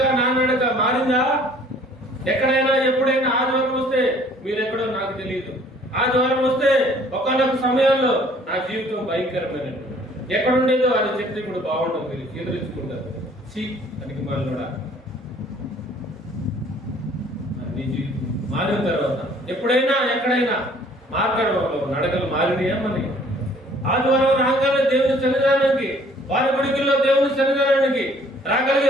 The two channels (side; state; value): both; normal; correlation 0.57